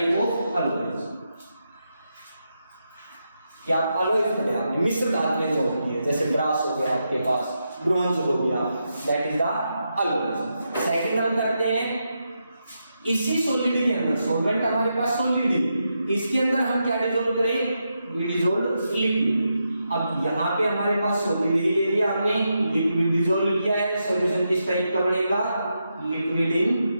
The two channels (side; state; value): both; inverted; correlation -0.85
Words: of alloys. क्या आप अलॉयज पढ़े आपने? मिश्र धातुएं जो होती है, जैसे ब्रास हो गया आपके पास, ब्रोंज हो गया, that is the alloys. Second हम करते हैं इसी सॉलिड के अंदर, सॉल्वेंट हमारे पास सॉलिड है, इसके अंदर हम क्या डिसॉल्व करें? We dissolve liquid. अब यहाँ पे हमारे पास सॉलिड ही ले लिया हमने, लिक्विड डिसॉल्व किया है। सॉल्यूशन किस टाइप का बनेगा? Liquid